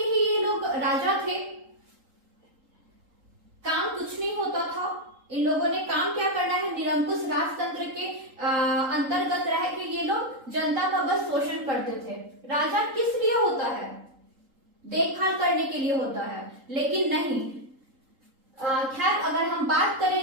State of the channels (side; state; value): left; late; 3.8 ms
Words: ही ये लोग राजा थे, काम कुछ नहीं होता था। इन लोगों ने काम क्या करना है, निरंकुश राजतंत्र के अंतर्गत रह के ये लोग जनता का बस शोषण करते थे। राजा किस लिए होता है, देखभाल करने के लिए होता है, लेकिन नहीं। खैर, अगर हम बात करें